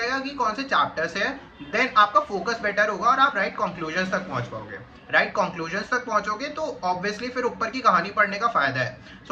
कि कौन से चैप्टर से है, देन आपका फोकस बेटर होगा और आप राइट कंक्लूजन तक पहुंच पाओगे। राइट कंक्लूजन तक पहुंचोगे तो ऑब्वियसली फिर ऊपर की कहानी पढ़ने का फायदा है,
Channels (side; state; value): both; identical; correlation 1.00